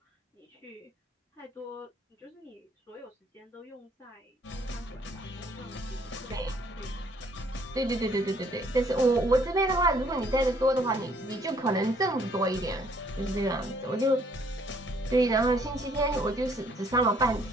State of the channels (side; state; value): both; normal; correlation 0.63